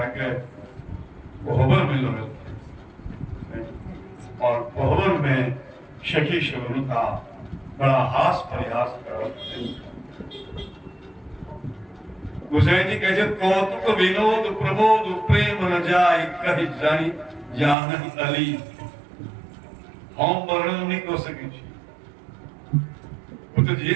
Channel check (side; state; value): left; drops out; at 17.8 s